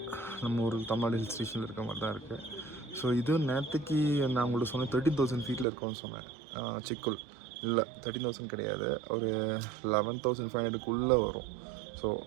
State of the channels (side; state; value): left; drops out; at 5.7 s